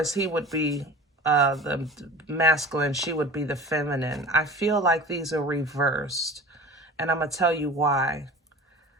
he would be the masculine, she would be the feminine. I feel like these are reversed, and I'm going to tell you why.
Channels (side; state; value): both; normal; correlation 0.38